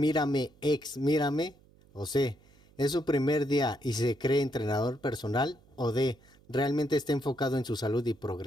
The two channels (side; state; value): right; noise; hum, 28 dB below the sound